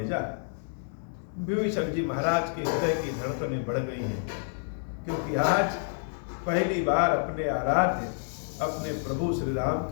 विभीषण जी महाराज के हृदय की धड़कनें बढ़ गई हैं, क्योंकि आज पहली बार अपने आराध्य, अपने प्रभु श्री राम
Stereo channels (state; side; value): silent; right; 59 dB below the other